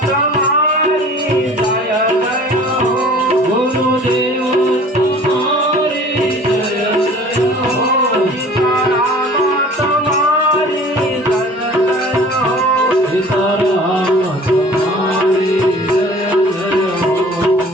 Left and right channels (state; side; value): normal; both; correlation 0.47